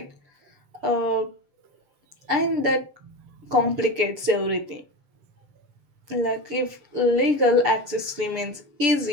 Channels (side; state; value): left; late; 6.9 ms